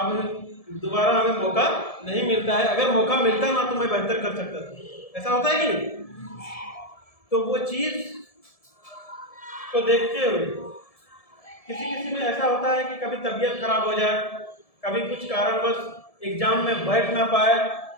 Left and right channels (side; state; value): right; late; 1.7 ms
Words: दोबारा हमें मौका नहीं मिलता है। अगर मौका मिलता ना तो मैं बेहतर कर सकता था। ऐसा होता है कि नहीं? तो वो चीज को देखते हुए किसी किसी में ऐसा होता है कि कभी तबीयत खराब हो जाए, कभी कुछ कारणवश एग्जाम में बैठ ना पाए